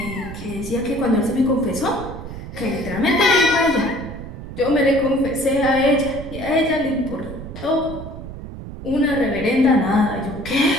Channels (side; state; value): right; noise; rumble, 11 dB below the sound